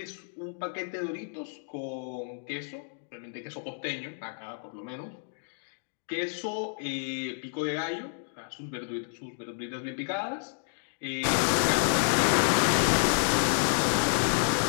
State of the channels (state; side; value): silent; right; digital silence